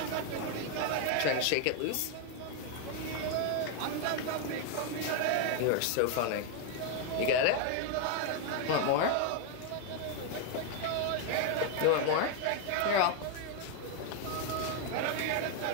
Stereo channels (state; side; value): different; both; correlation 0.00